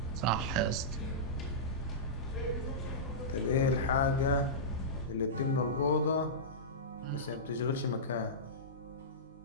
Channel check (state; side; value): normal; both; correlation -0.16